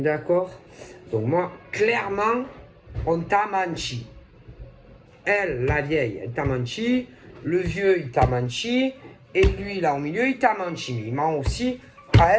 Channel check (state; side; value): identical; both; correlation 1.00